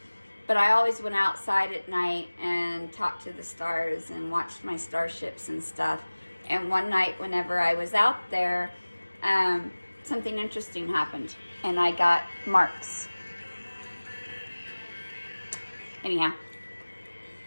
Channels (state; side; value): inverted; both; correlation -1.00